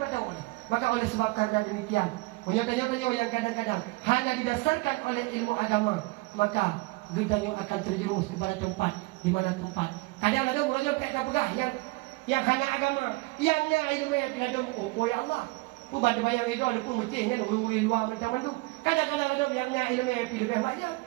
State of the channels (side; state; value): left; quieter; 24.0 dB